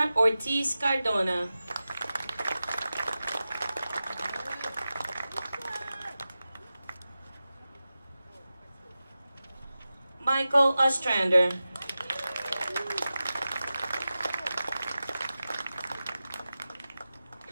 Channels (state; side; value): inverted; both; correlation -0.94